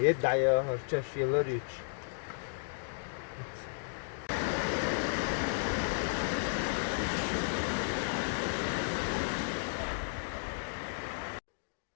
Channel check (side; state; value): right; silent; digital silence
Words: Yedda ya harçaş yıllar üç.